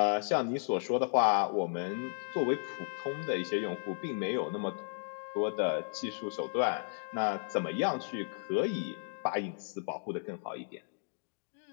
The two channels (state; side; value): silent; right; digital silence